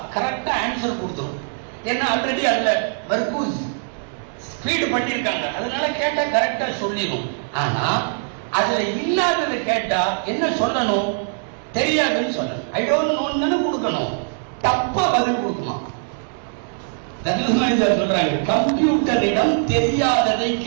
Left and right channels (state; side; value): silent; left; 60 dB below the other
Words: கரெக்டா ஆன்சர் கொடுத்துரும். ஏன்னா ஆல்ரெடி அதுல மர்கூஸ் ஃபீட் பண்ணிருக்காங்க, அதனால கேட்டா கரெக்டா சொல்லிடும். ஆனா அதுல இல்லாததை கேட்டா என்ன சொல்லணும், தெரியாதுன்னு சொல்லணும். ஐ டோன்ட் நோன்னு கொடுக்கணும், தப்பா பதில் கொடுக்குமா. சொல்றாங்க, கம்ப்யூட்டரிடம் தெரியாததை